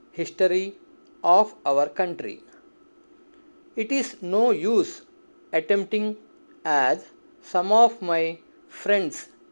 history of our country. It is no use attempting, as some of my friends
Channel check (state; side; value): inverted; both; correlation -1.00